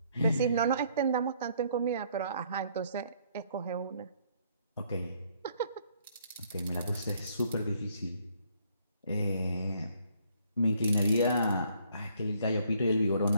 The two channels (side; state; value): both; inverted; correlation -0.66